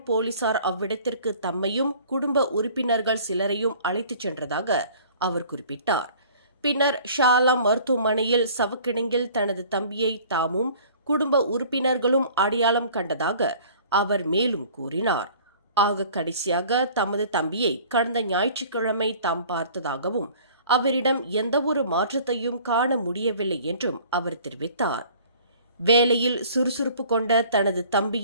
போலீசார் அவ்விடத்திற்கு தம்மையும் குடும்ப உறுப்பினர்கள் சிலரையும் அழைத்துச் சென்றதாக அவர் குறிப்பிட்டார். பின்னர் ஷாலாம் மருத்துவமனையில் சவக்கிடங்கில் தனது தம்பியை தாமும் குடும்ப உறுப்பினர்களும் அடையாளம் கண்டதாக அவர் மேலும் கூறினார். ஆக கடைசியாக தமது தம்பியை கடந்த ஞாயிற்றுக்கிழமை தாம் பார்த்ததாகவும் அவரிடம் எந்தவொரு மாற்றத்தையும் காண முடியவில்லை என்றும் அவர் தெரிவித்தார். வேலையில் சுறுசுறுப்பு கொண்ட தனது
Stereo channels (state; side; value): inverted; both; correlation -0.50